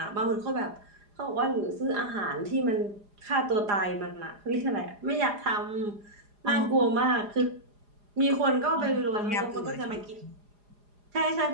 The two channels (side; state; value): left; late; 4.9 ms